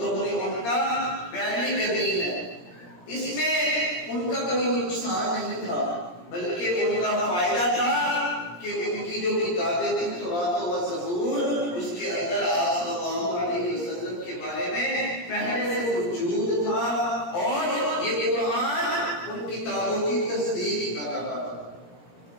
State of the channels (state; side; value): late; right; 17 ms